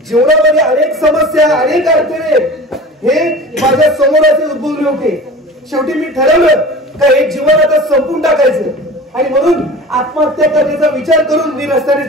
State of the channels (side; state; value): both; normal; correlation 0.38